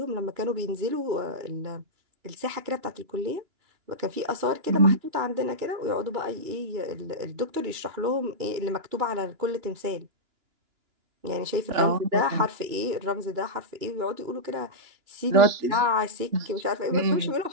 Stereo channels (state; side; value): late; left; 2.9 ms